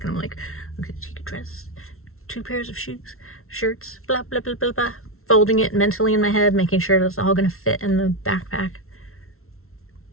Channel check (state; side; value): late; right; 0.62 ms